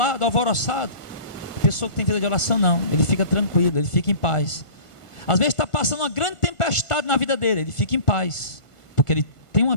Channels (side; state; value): right; late; 1.5 ms